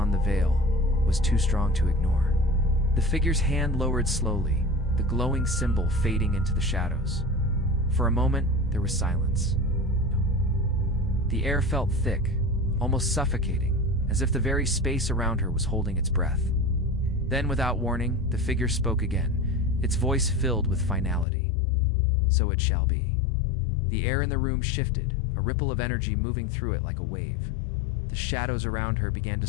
the veil, was too strong to ignore. The figure's hand lowered slowly, the glowing symbol fading into the shadows. For a moment, there was silence. The air felt thick, almost suffocating, as if the very space around her was holding its breath. Then, without warning, the figure spoke again, its voice filled with finality. "So it shall be." The air in the room shifted, a ripple of energy moving through it like a wave. The shadows around her began to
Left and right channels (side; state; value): right; drops out; at 21.2 s